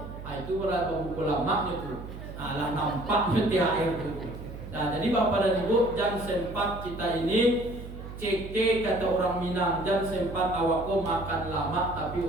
Itu berapa buku lama itu. Lah nampak THR itu. Nah, jadi Bapak dan Ibu, jangan sempat kita ini ceke kata orang Minang, jangan sempat awakku makan lama tapi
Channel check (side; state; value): right; noise; hum, 11 dB below the sound